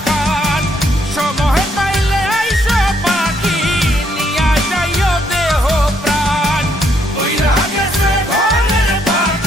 খান, সময় পাইলে আইসো পাখি, নিয়া যাইও দেহ প্রাণ। ওইরা গেছে ঘরের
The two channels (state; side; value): normal; both; correlation 0.72